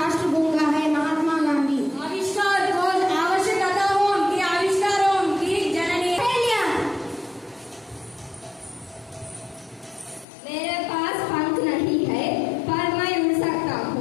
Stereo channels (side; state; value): right; drops out; at 10.2 s